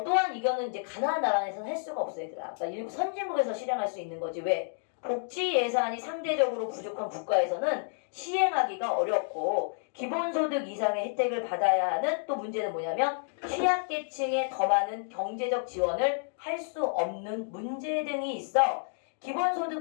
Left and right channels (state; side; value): silent; right; digital silence